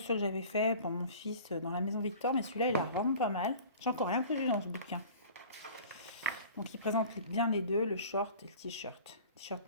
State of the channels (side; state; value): both; inverted; correlation -0.44